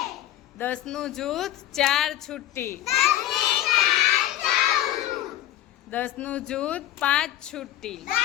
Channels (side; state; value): right; quieter; 13.3 dB